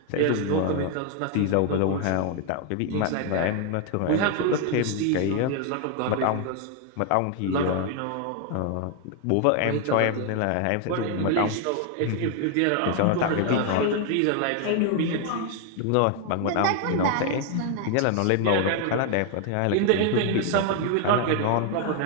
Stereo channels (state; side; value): different; both; correlation 0.01